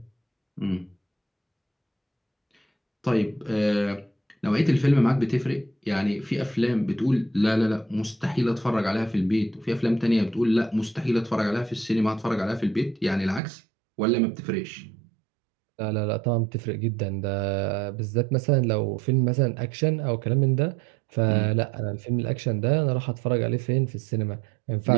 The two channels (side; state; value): left; drops out; at 13.4 s